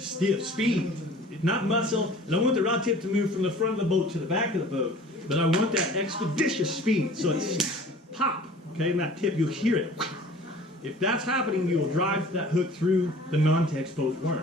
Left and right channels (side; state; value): both; normal; correlation 0.47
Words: speed, not muscle. I don't want the rod tip to move from the front of the boat to the back of the boat, but I want that expeditious speed. So it's pop, okay, and that tip, you'll hear it. If that's happening, you will drive that hook through the non-text posed